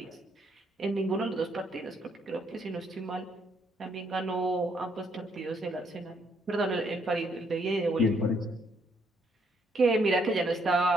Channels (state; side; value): normal; both; correlation 0.72